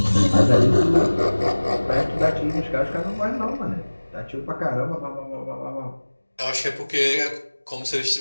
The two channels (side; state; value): both; inverted; correlation -1.00